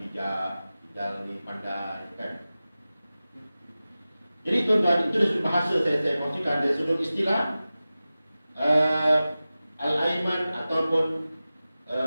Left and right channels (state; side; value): inverted; both; correlation -0.96